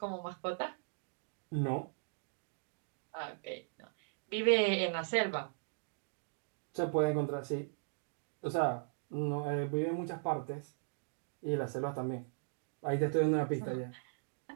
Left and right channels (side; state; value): left; silent; digital silence